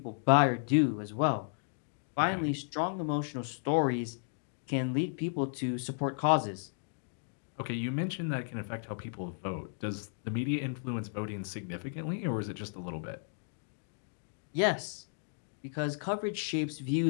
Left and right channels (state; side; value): silent; right; digital silence